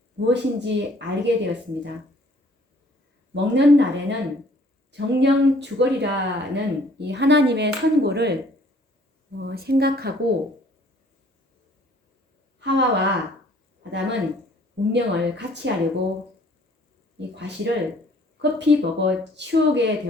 무엇인지 알게 되었습니다. 먹는 날에는 정령 죽으리라는 이 하나님의 선고를 생각하고 하와와 아담은 운명을 같이 하려고 이 과실을 급히 먹어 치우게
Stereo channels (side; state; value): both; normal; correlation 0.58